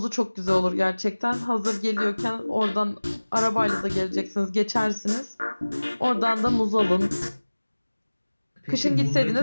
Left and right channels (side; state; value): both; inverted; correlation -1.00